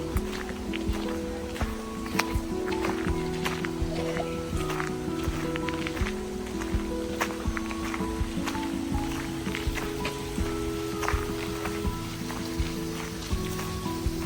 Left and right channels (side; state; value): both; identical; correlation 1.00